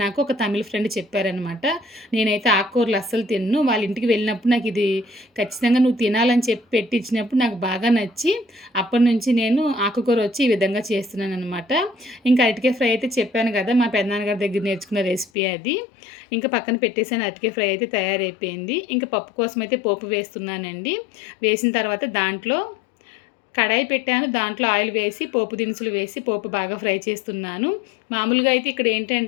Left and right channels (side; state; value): right; drops out; at 15.3 s